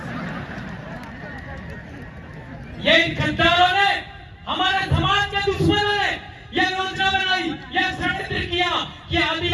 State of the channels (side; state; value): both; identical; correlation 1.00